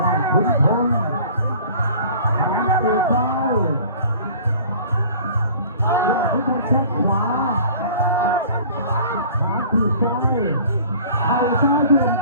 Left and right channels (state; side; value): inverted; both; correlation -0.47